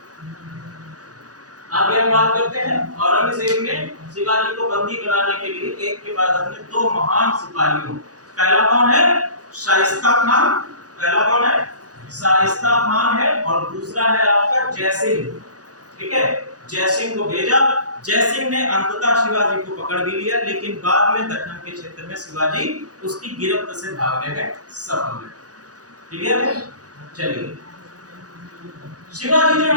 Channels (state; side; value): late; left; 0.67 ms